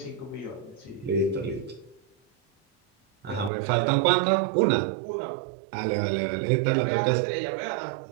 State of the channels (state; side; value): drops out; left; at 3.5 s